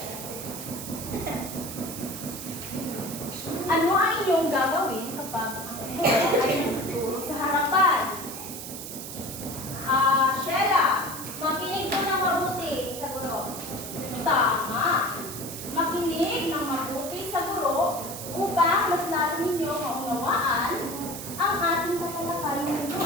Ano ang inyong gagawin kapag ang buhok ay nagtuturo sa harapan? Sheila, makinig ko ng mabuti sa guro. Tama. Makinig ng mabuti sa guro upang mas lalo ninyo maunawaan ang ating tatalakayin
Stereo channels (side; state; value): right; noise; hiss, 9 dB below the sound